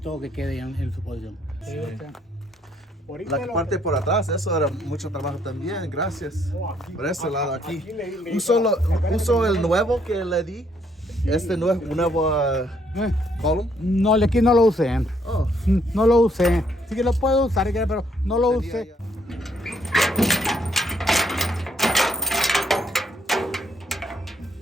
que quede en su posición. La parte por atrás, eso era mucho trabajo también, gracias. Por ese lado aquí. ¿Uso el nuevo que le di? ¿Este nuevo column? No, aquí no lo usé. No lo usé. Sí que lo puedo usar, pero no lo usé.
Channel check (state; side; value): normal; both; correlation 0.69